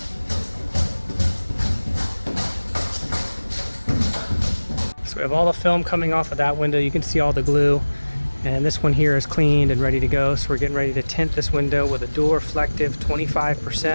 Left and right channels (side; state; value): both; inverted; correlation -1.00